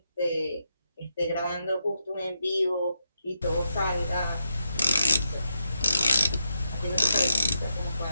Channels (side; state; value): both; inverted; correlation -0.85